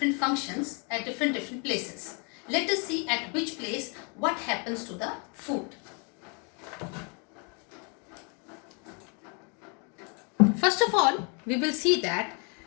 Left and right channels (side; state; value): right; quieter; 35.2 dB